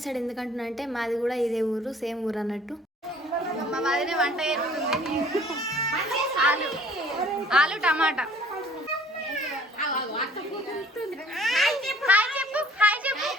సైడ్ ఎందుకంటున్నా అంటే మాది కూడా ఇదే ఊరు, సేమ్ ఊరు అన్నట్టు. మా వదినే వంట చేస్తుంది. ఆలు టమాటా.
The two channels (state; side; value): normal; both; correlation 0.54